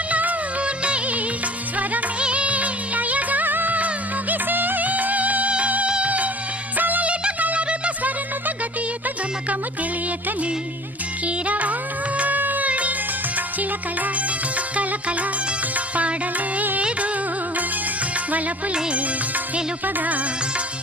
గమకము తెలియకని కీరవాణి చిలకల కలకల పాడలేదు వలపులే తెలుపగా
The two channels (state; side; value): normal; both; correlation 0.46